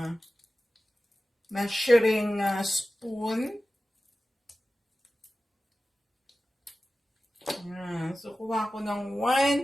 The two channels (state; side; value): normal; both; correlation 0.95